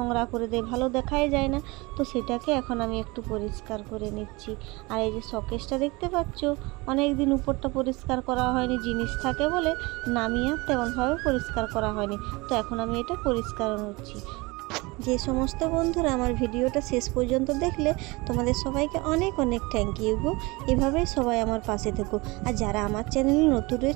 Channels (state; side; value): quieter; left; 24.4 dB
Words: করে দেয়, ভালো দেখাই যায় না। তো সেটাকে এখন আমি একটু পরিষ্কার করে নিচ্ছি। আর এই যে শোকেসটা দেখতে পাচ্ছ, অনেক দিন উপরটা পরিষ্কার করা হয়নি, জিনিস থাকে বলে নামিয়ে আর তেমনভাবে পরিষ্কার করা হয়নি। তো এখন আমি এটা পরিষ্কার করছি। যে সমস্ত বন্ধুরা আমার ভিডিওটা শেষ পর্যন্ত দেখলে তোমাদের সবাইকে অনেক অনেক থ্যাংক ইউ গো। এভাবেই সবাই আমার পাশে থেকো। আর যারা আমার চ্যানেলে নতুন